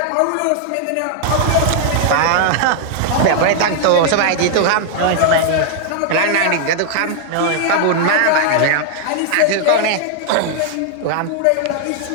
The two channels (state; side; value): different; both; correlation 0.00